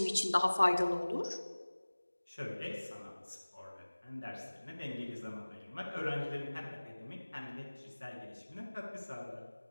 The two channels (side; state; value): both; inverted; correlation -1.00